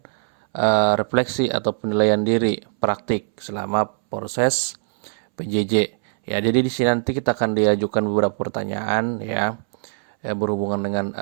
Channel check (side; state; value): left; silent; 63 dB below the other